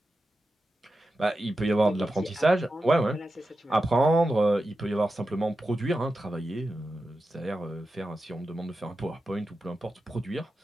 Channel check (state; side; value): normal; both; correlation 0.91